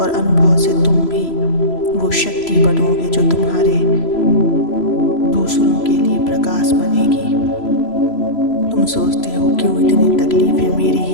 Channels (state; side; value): late; right; 3.0 ms